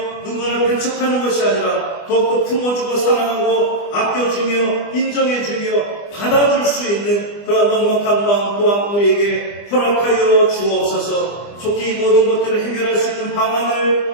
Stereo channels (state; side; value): late; right; 25 ms